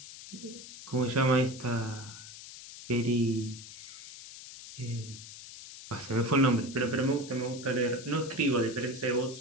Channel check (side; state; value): left; noise; hiss, 14 dB below the sound